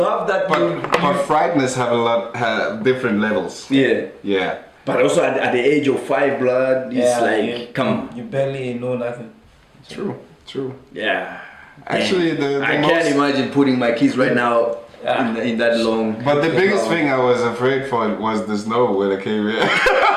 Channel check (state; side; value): identical; both; correlation 1.00